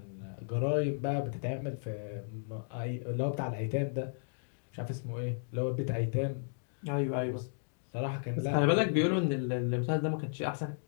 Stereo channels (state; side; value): silent; right; digital silence